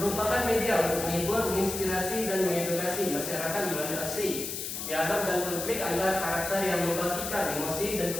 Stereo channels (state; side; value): noise; left; hiss, 5 dB below the sound